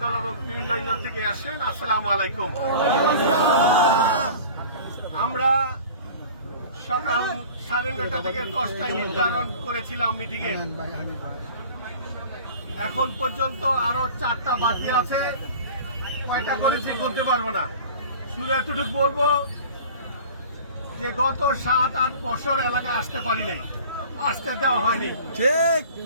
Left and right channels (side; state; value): both; inverted; correlation -0.42